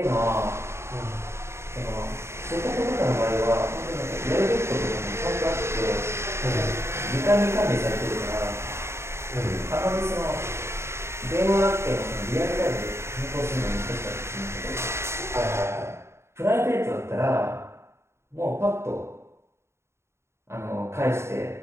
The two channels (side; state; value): left; late; 0.13 ms